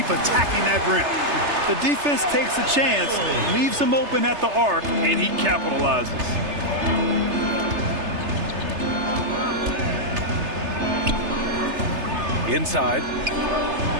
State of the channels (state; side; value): late; left; 3.3 ms